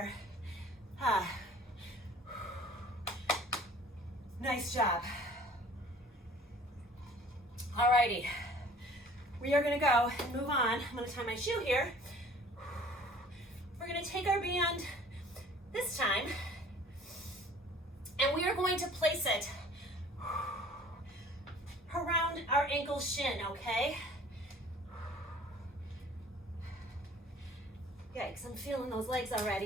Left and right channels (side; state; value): both; normal; correlation 0.50